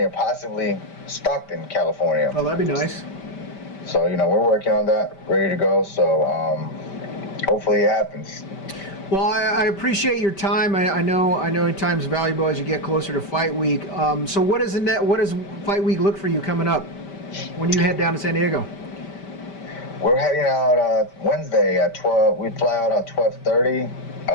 possibly Stockton, California. Oh, that'd be nice. So, we're working on that, ready to go. So, hopefully it happens. Well, I appreciate your time. I know time's valuable as you get closer to fight week. So what does fight week look for you coming up when you head down to San Diego? We're heading out Wednesday at 12. We fly out at 12:30.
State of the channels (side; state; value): right; late; 5.1 ms